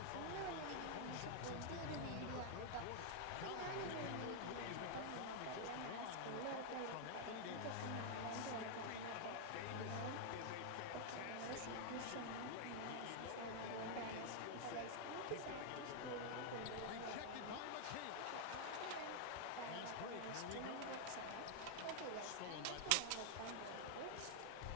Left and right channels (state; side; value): different; both; correlation 0.00